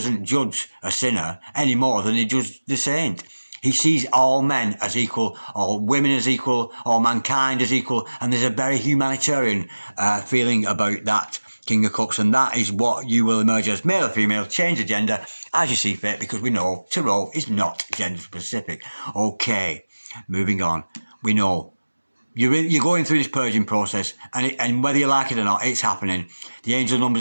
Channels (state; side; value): inverted; both; correlation -1.00